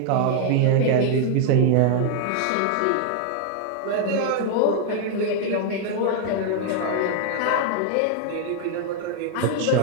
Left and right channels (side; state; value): both; different; correlation 0.00